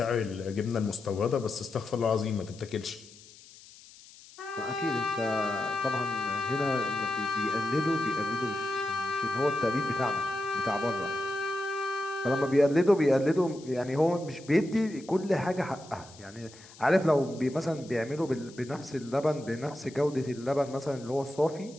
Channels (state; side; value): noise; left; hiss, 21 dB below the sound